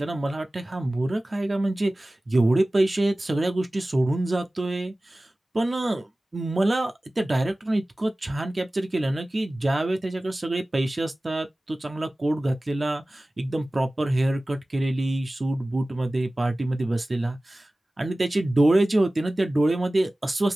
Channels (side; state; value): both; normal; correlation 0.97